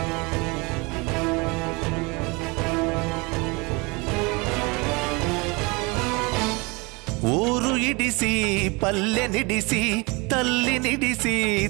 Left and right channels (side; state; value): left; quieter; 27.2 dB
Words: ఊరు ఇడిసి పల్లె నిడిసి, తల్లి నిడిసి